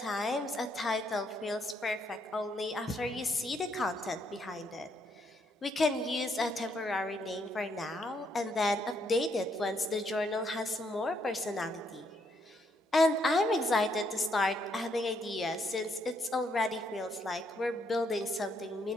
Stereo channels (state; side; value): normal; both; correlation 0.73